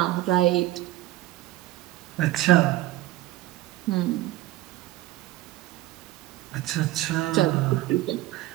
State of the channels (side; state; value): left; quieter; 16.5 dB